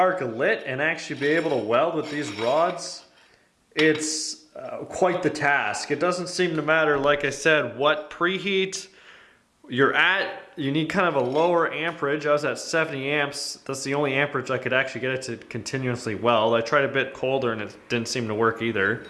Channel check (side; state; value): both; identical; correlation 1.00